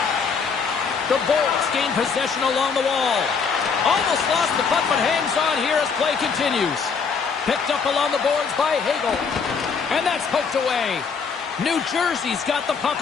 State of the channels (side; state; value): right; quieter; 5.7 dB